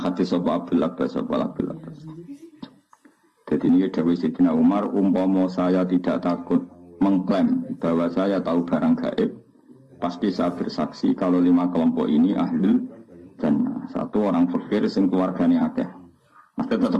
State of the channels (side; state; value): both; identical; correlation 1.00